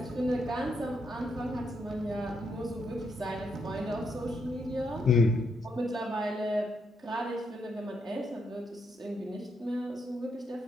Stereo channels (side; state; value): both; normal; correlation 0.78